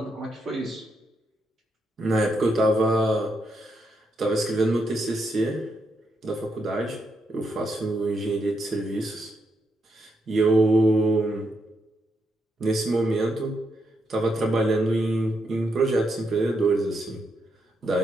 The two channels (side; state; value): both; normal; correlation 0.81